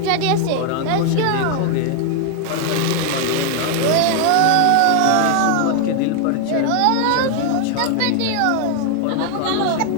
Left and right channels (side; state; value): both; different; correlation 0.00